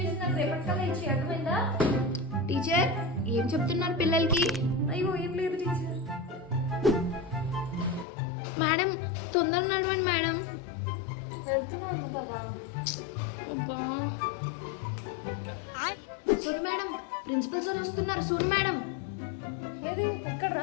నాకు రేపటికల్లా ఇచ్చి, అర్థమైందా? టీచర్ ఏం చెప్తున్నారు పిల్లలకి? అయ్యో ఏం లేదు టీచర్. మేడం తొందర నడవండి మేడం. వెళ్తున్నాను కదా. అబ్బా సోను మేడం ప్రిన్సిపల్ సార్ వస్తున్నారు. సోను మేడం ఏది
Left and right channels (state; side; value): drops out; right; at 8.1 s